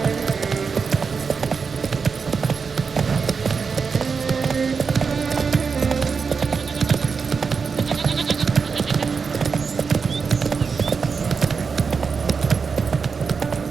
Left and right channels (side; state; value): left; quieter; 5.4 dB